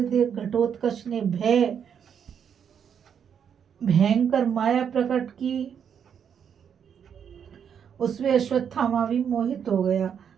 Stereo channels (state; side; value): quieter; left; 7.9 dB